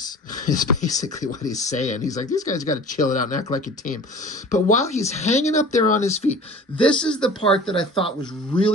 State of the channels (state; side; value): normal; both; correlation 0.42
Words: is basically what he's saying. He's like, these guys got to chill it out and act like a team. But while he's hanging up there on his feet, this is the part that I thought was